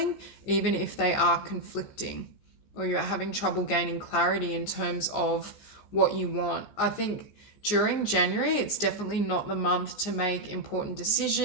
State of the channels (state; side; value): late; right; 14 ms